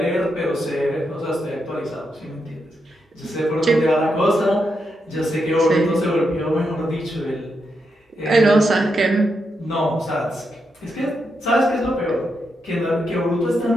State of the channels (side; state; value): both; normal; correlation 0.83